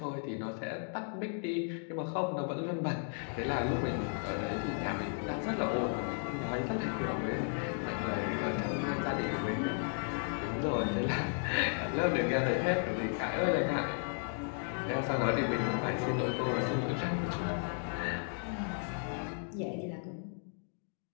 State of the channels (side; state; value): right; silent; 55 dB below the other